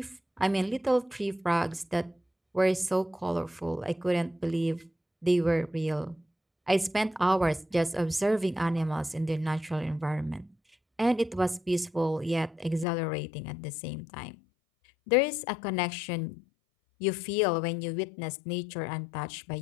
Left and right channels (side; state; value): right; drops out; at 12.9 s